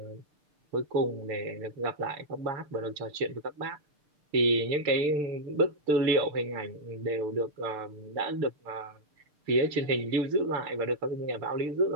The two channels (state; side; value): late; left; 6.7 ms